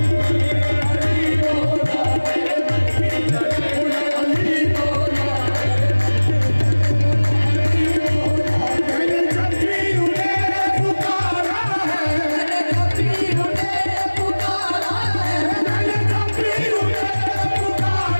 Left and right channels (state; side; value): inverted; both; correlation -1.00